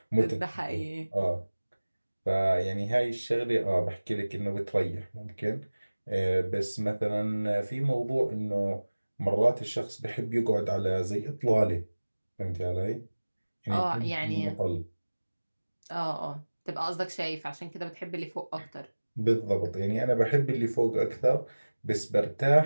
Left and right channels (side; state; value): both; inverted; correlation -1.00